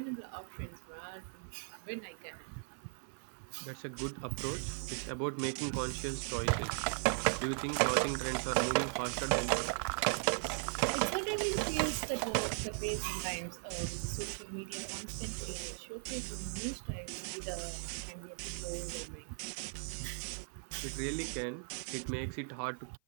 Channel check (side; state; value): left; silent; 52 dB below the other